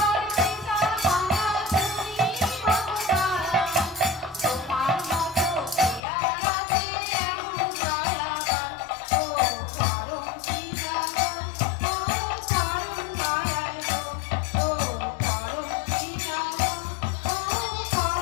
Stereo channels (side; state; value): right; drops out; at 6.0 s